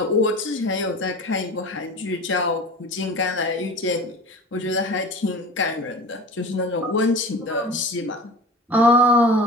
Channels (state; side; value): normal; both; correlation 0.36